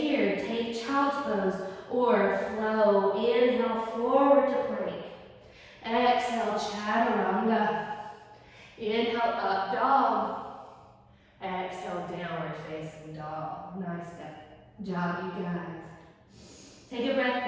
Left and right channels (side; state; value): both; identical; correlation 1.00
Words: take child's pose or flow. Inhale, forward to plank. Exhale, chaturanga. Inhale, up dog. Exhale, downward facing dog. Nice job, you guys. Take a